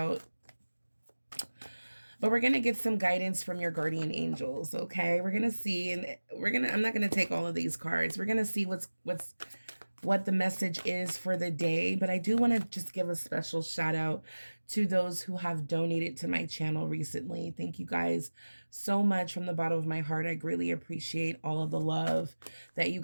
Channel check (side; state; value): both; inverted; correlation -1.00